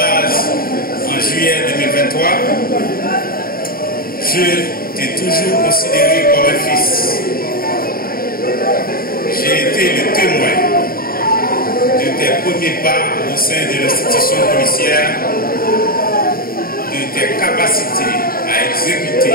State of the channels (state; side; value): late; right; 0.43 ms